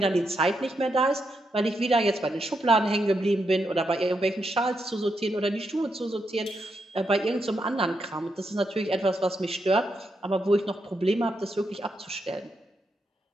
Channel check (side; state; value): both; normal; correlation 0.82